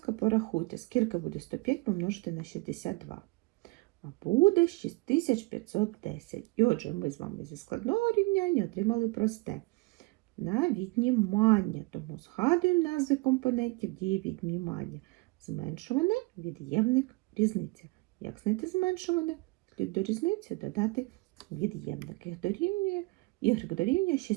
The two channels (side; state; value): left; quieter; 24.3 dB